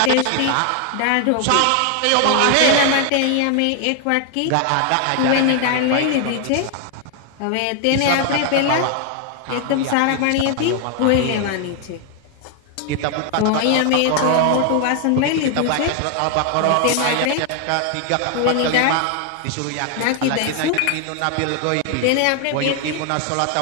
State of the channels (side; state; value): both; different; correlation 0.00